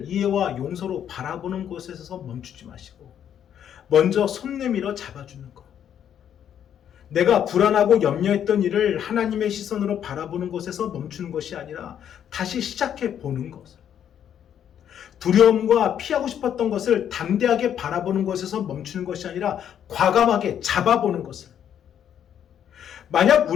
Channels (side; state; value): right; quieter; 9.4 dB